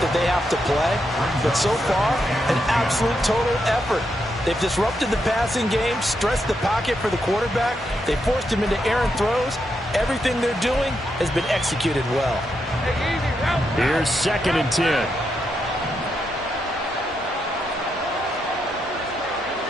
they have to play. But so far, an absolute total effort. They've disrupted the passing game, stressed the pocket for the quarterback. They forced him into errant throws. Everything they're doing has been executed well. Here's 2nd and 10.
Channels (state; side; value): normal; both; correlation 0.82